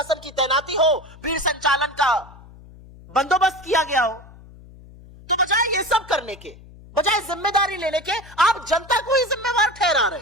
की तैनाती हो, भीड़ संचालन का बंदोबस्त किया गया हो। तो बजाय ये सब करने के, बजाय जिम्मेदारी लेने के, आप जनता को ही जिम्मेवार ठहरा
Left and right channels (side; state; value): left; noise; hum, 21 dB below the sound